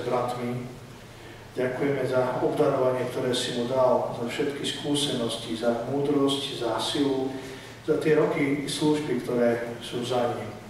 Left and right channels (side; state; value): both; identical; correlation 1.00